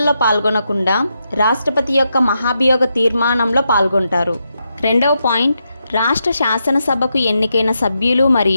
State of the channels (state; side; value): inverted; both; correlation -0.84